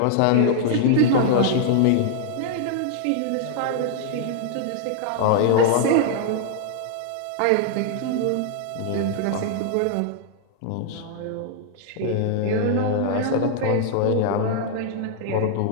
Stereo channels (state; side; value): different; both; correlation -0.01